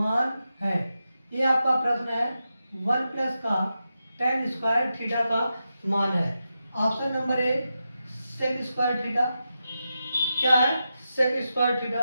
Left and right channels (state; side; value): inverted; both; correlation -0.89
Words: है, ये आपका प्रश्न है। 1 प्लस का tan स्क्वायर थीटा का मान है। Option number A sec square theta, क्या है sec square